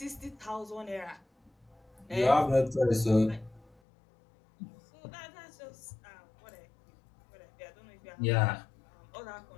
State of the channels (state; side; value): drops out; right; at 3.8 s